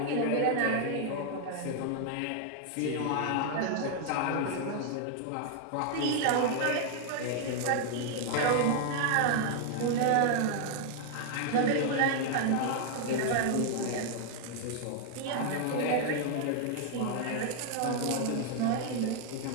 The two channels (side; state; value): both; different; correlation 0.00